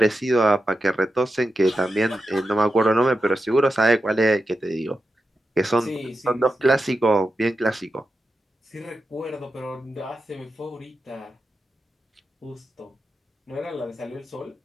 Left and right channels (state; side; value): normal; both; correlation 0.89